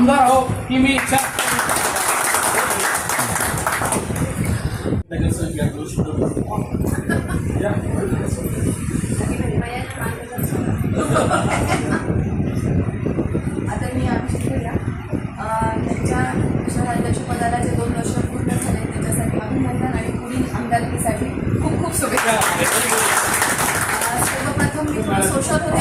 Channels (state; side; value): identical; both; correlation 1.00